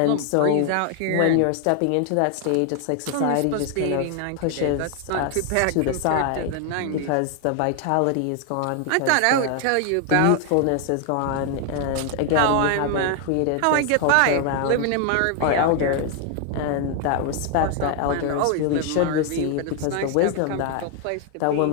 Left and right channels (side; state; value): both; different; correlation 0.00